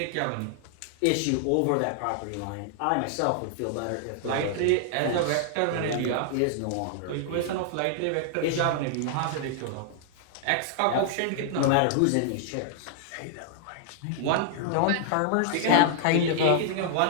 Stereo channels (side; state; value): both; different; correlation -0.01